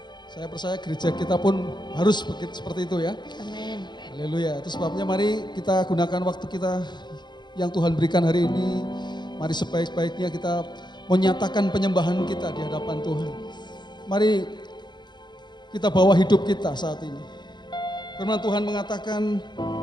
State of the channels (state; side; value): late; right; 0.21 ms